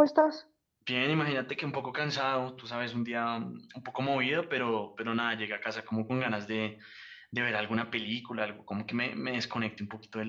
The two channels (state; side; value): identical; both; correlation 1.00